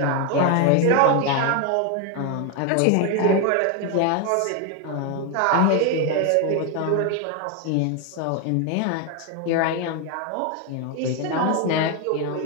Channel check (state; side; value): different; both; correlation 0.01